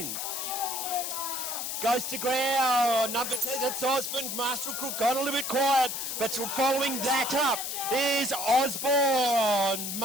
Goes to ground. Number 10, that's Osborne. Master Crook got a little bit quiet, but following that up is Osborne.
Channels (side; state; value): left; noise; hiss, 4 dB below the sound